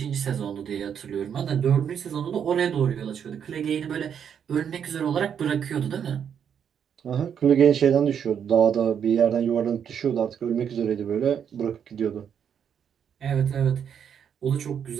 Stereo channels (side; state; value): left; quieter; 8.1 dB